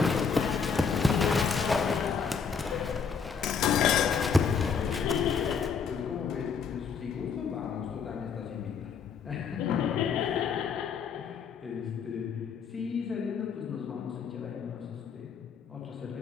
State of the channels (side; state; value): right; quieter; 6.1 dB